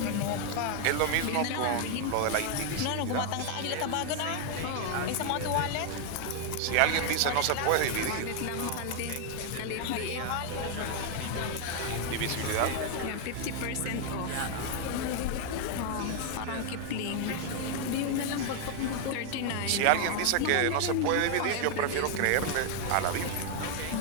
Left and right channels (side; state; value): both; different; correlation 0.00